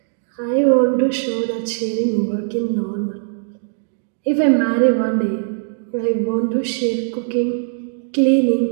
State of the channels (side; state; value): left; silent; digital silence